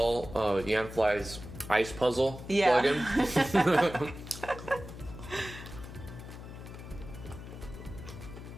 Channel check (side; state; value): left; noise; hum, 12 dB below the sound